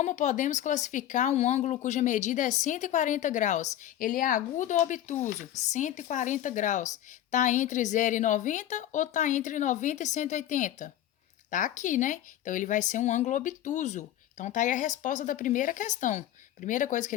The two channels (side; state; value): right; quieter; 12.2 dB